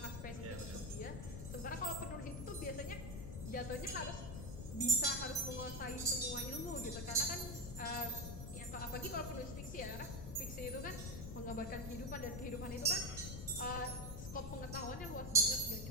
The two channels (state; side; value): noise; left; rumble, 7 dB below the sound